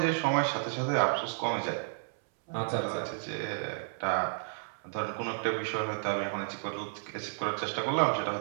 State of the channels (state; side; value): silent; left; 56 dB below the other